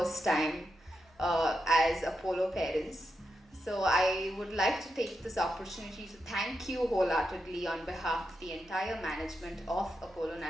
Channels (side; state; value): both; normal; correlation 0.86